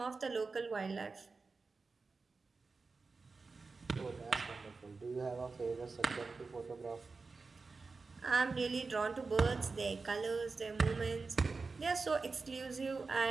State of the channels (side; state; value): left; quieter; 4.2 dB